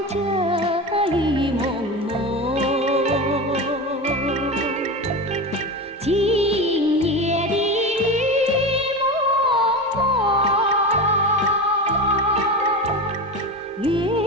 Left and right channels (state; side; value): normal; both; correlation 0.23